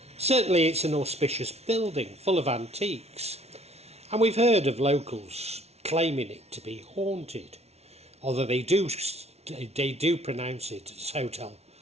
Certainly it's an auspicious building full of antiques, and we've heard of locals claiming it to be haunted, although they do pronounce it as Hotel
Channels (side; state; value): left; late; 0.31 ms